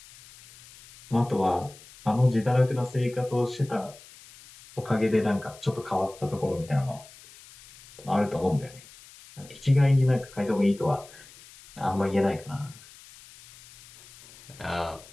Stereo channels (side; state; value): left; noise; hiss, 21 dB below the sound